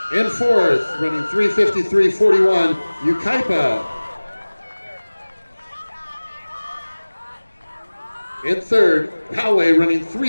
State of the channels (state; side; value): inverted; both; correlation -1.00